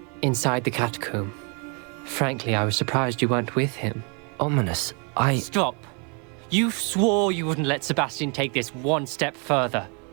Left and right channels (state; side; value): quieter; left; 35.7 dB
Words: Inside the catacomb. Frankly, I was surprised you weren't with him. Ominous, Stop. You swore you wouldn't let Sebastian take this one step further.